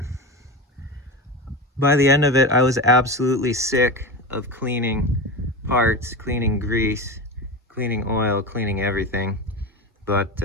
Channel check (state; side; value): normal; both; correlation 0.23